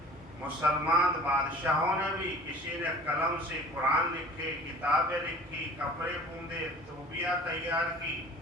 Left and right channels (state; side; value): normal; both; correlation 0.45